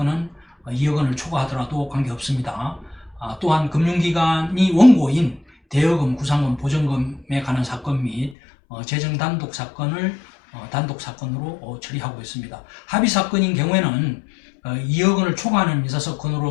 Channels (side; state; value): right; drops out; at 8.3 s